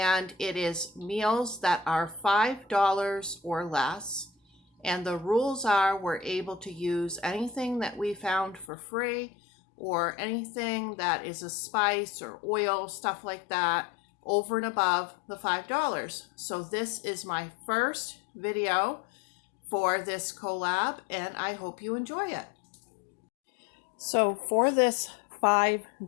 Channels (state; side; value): drops out; right; at 8.7 s